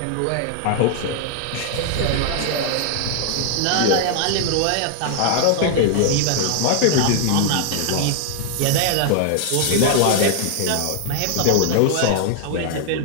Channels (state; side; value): different; both; correlation 0.00